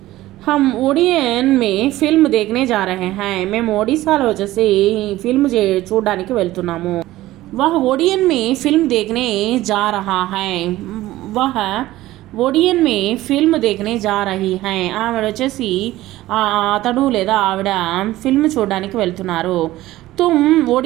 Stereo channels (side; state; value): left; quieter; 16.3 dB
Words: हम ओडियन में फिल्म देखने जा रहे हैं, మేము ఒడిశాలో వచ్చేసి ఫిల్మ్ చూడడానికి వెళ్తున్నాము. वह ओडियन में फिल्म देखने जा रहा है, वह ఓడియన్ మే ఫిల్మ్ దేఖనే జా రహీ హై, ఆవిడ వచ్చేసి అతడు లేదా ఆవిడ ఫిల్మ్ చూడడానికి వెళ్తున్నారు. తుమ్